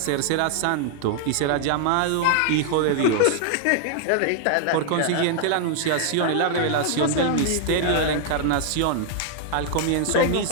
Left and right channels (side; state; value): both; different; correlation 0.00